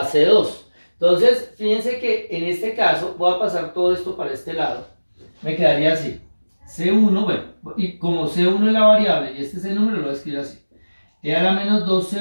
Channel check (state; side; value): inverted; both; correlation -1.00